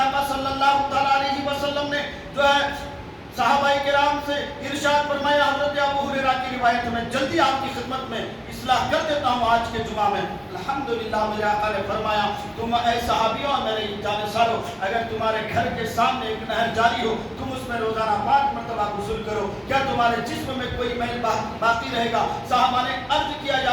صلی اللہ تعالیٰ علیہ وسلم نے جو ہے صحابہ کرام سے ارشاد فرمایا، حضرت ابو ہریرہ کی روایت میں جلدی آپ کی خدمت میں اصلاح کر دیتا ہوں آج کے جمعہ میں۔ الحمدللہ میرے آقا نے فرمایا، تم اے صحابیوں میرے جانشینوں، اگر تمہارے گھر کے سامنے ایک نہر جاری ہو، تم اس میں روزانہ 5 مرتبہ غسل کرو، کیا تمہارے جسم میں کوئی میل باقی رہے گا؟ صحابہ نے عرض کیا،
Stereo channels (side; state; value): both; identical; correlation 1.00